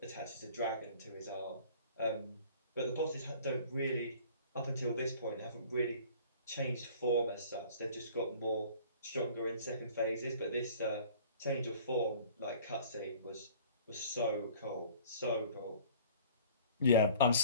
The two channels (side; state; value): both; inverted; correlation -0.49